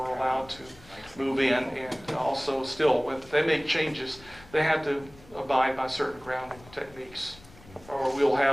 allowed to move in. And also still, when they make changes, they have to abide by certain grounding techniques, or we'll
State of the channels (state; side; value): noise; left; rumble, 23 dB below the sound